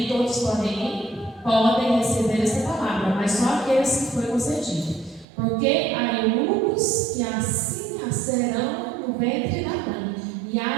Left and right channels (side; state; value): left; drops out; at 5.2 s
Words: todos podem receber esta palavra, mas só aqueles que foi concedido. Porque há eunucos que assim nascerão no ventre da mãe, e